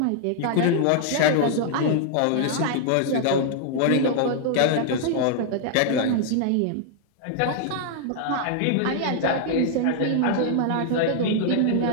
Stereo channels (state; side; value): different; both; correlation 0.00